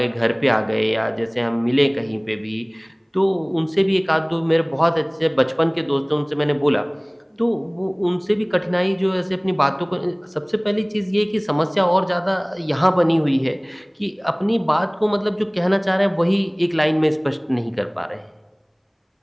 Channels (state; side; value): identical; both; correlation 1.00